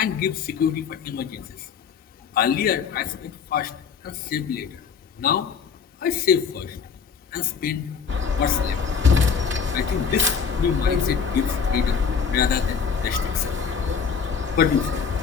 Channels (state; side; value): quieter; right; 6.4 dB